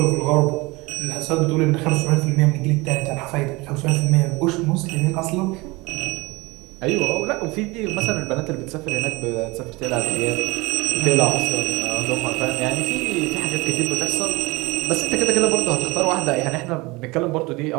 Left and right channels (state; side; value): quieter; left; 23.7 dB